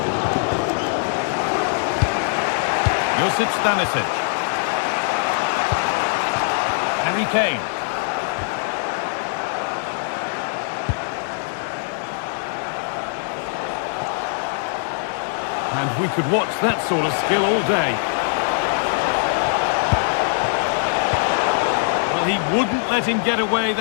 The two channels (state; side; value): silent; right; digital silence